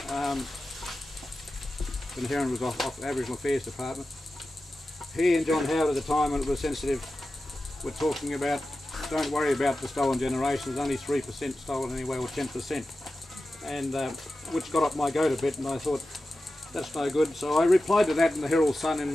When Heron was off Aboriginal Affairs Department, he and John Howard at the time, when it was sensitive, were talking about, don't worry about the stolen generation, there's only 3% stolen anyway, or 10%, and which got up my goat a bit, and I thought, that's no good. So I replied to that in the Herald Sun in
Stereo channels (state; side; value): normal; both; correlation 0.93